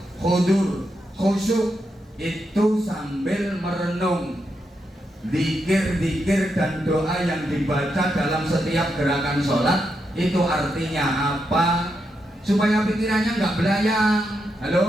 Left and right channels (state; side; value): normal; both; correlation 0.83